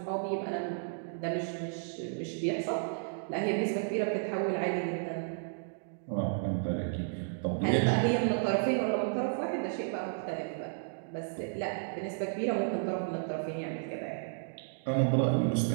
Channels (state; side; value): silent; left; digital silence